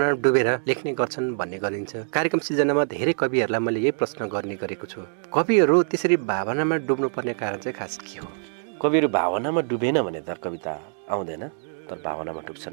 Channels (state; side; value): silent; left; digital silence